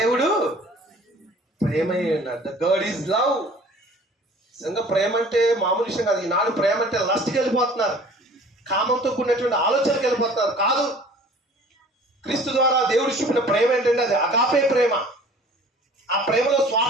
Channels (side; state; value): both; normal; correlation 0.49